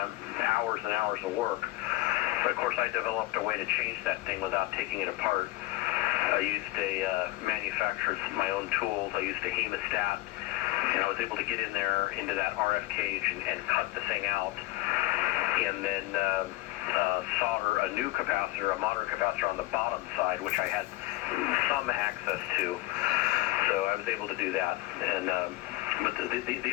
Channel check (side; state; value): right; quieter; 18.6 dB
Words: hours and hours of work. But of course, I developed a way to change that thing without taking it apart. I used my own tools. I used a hemostat, and I was able to get in there into that RF cage and cut the thing out, and then solder a new capacitor, a modern capacitor on the bottom side, which I had some access to. So I was able to do that. And but